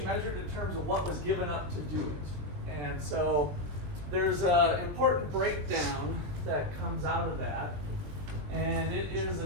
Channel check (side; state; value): left; late; 20 ms